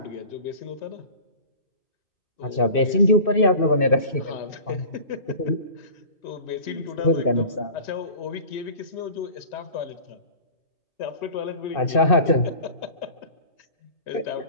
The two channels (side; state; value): right; late; 2.6 ms